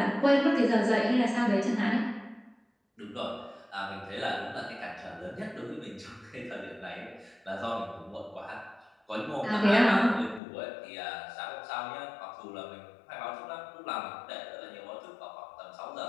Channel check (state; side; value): drops out; right; at 10.4 s